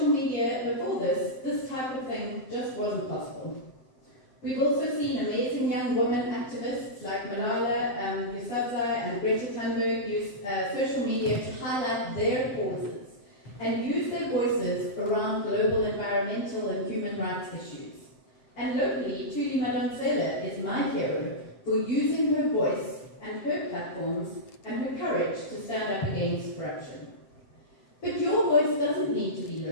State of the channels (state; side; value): late; right; 7.8 ms